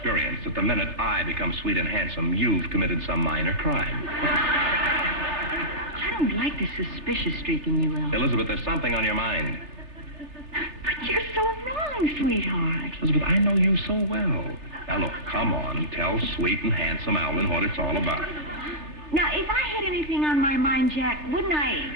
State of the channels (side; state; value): right; late; 3.4 ms